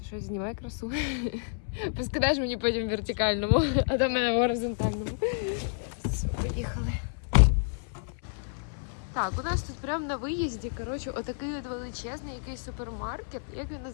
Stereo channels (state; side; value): silent; right; 58 dB below the other